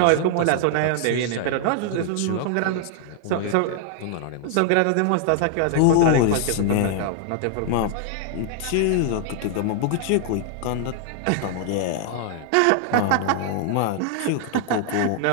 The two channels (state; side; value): different; both; correlation 0.00